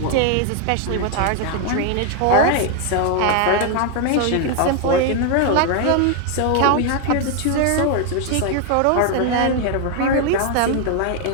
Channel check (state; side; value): different; both; correlation 0.00